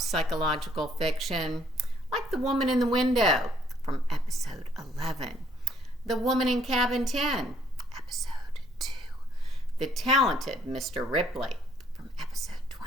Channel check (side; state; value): both; normal; correlation 0.65